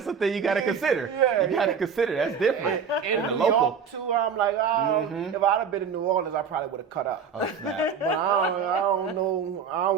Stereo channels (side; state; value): left; quieter; 6.4 dB